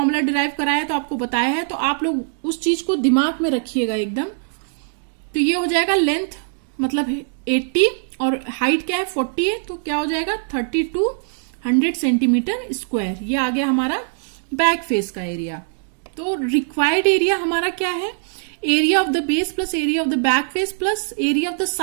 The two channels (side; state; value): left; silent; digital silence